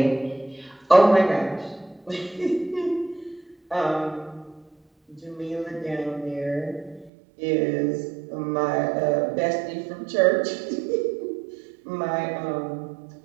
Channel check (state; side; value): drops out; left; at 7.1 s